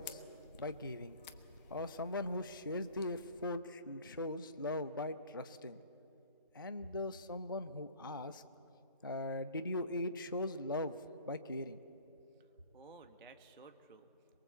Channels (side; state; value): both; inverted; correlation -0.47